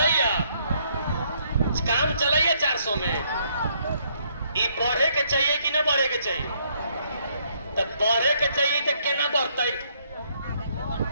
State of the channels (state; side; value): inverted; both; correlation -0.70